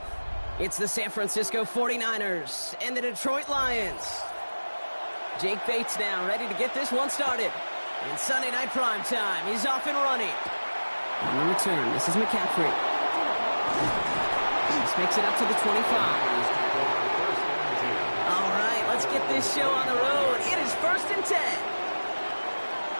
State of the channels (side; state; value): both; inverted; correlation -1.00